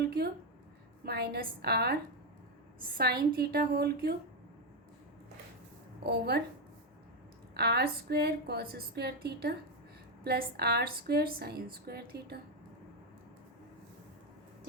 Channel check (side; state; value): both; normal; correlation 0.06